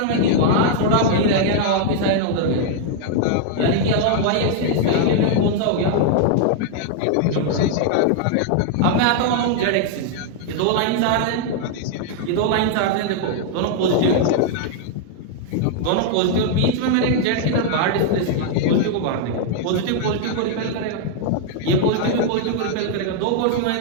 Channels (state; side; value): different; both; correlation 0.00